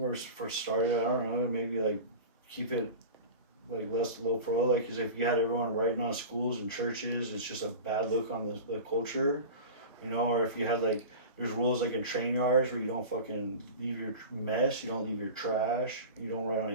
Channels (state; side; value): inverted; both; correlation -0.32